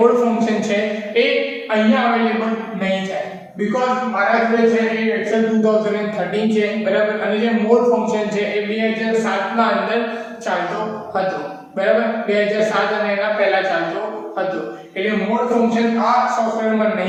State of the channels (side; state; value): both; identical; correlation 1.00